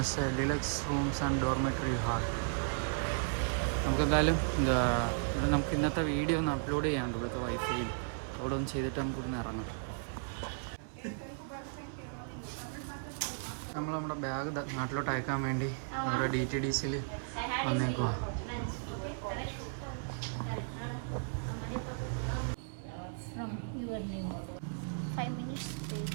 deluxe rooms and dormitory hall. നമുക്കെന്തായാലും ഇവിടെ നമുക്ക് ഇന്നത്തെ വീഡിയോ ഒന്ന് അപ്ലോഡ് ചെയ്യാനുണ്ട് ഇവിടുത്തെ വൈഫൈയിൽ. അവിടെ ഒന്ന് ചെയ്തിട്ട് നമുക്ക് ഇവിടുന്ന് ഇറങ്ങാം. നമ്മൾ നമ്മുടെ ബാഗ് നാട്ടിലോട്ട് അയക്കാൻ വേണ്ടി അവിടെ DTDCയിൽ വന്നേക്കുവാ.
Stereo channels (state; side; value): silent; left; 54 dB below the other